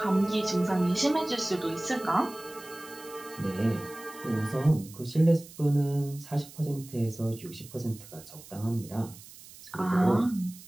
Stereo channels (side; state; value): right; noise; hiss, 18 dB below the sound